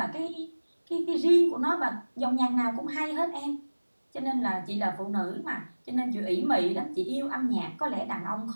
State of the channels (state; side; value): inverted; both; correlation -1.00